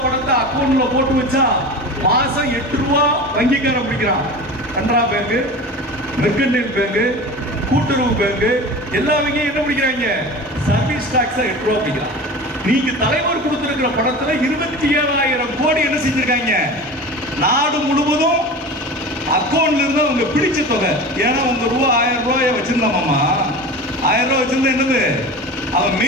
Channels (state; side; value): normal; both; correlation 0.33